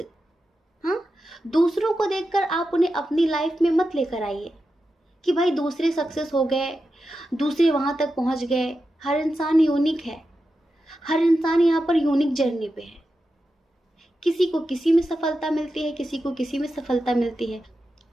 हाँ, दूसरों को देखकर आप उन्हें अपनी लाइफ में मत लेकर आइए कि भाई दूसरे सक्सेस हो गए, दूसरे वहाँ तक पहुँच गए। हर इंसान यूनिक है, हर इंसान यहाँ पर यूनिक जर्नी पे है। किसी को किसी में सफलता मिलती है, किसी को किसी में सफलता मिलती है।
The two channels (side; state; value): both; normal; correlation 0.90